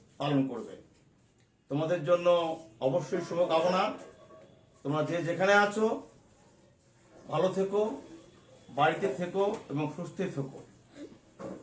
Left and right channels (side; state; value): both; identical; correlation 1.00